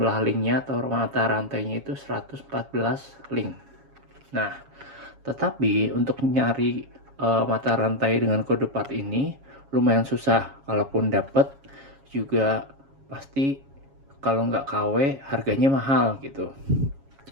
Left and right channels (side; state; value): left; late; 7.3 ms